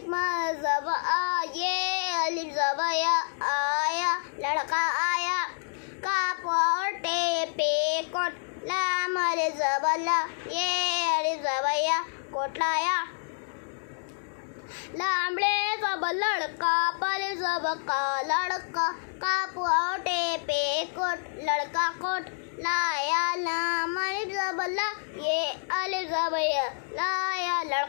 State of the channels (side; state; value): right; silent; digital silence